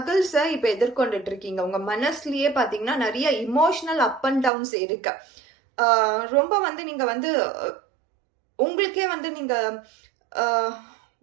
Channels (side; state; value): left; drops out; at 4.5 s